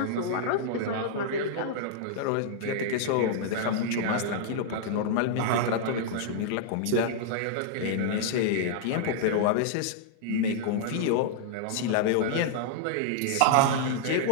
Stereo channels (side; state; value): both; different; correlation -0.01